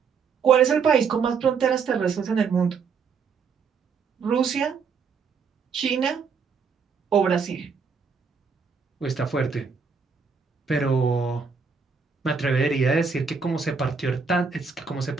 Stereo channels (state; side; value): quieter; left; 5.6 dB